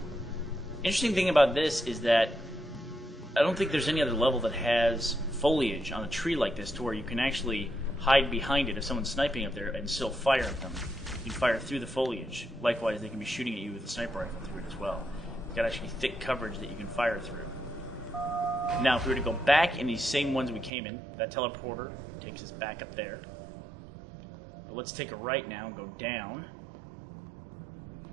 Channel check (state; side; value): drops out; left; at 20.7 s